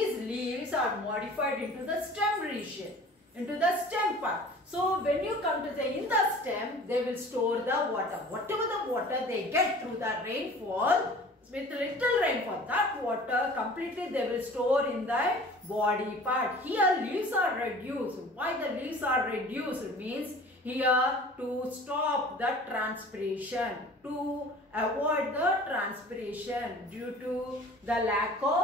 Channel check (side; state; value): both; normal; correlation 0.45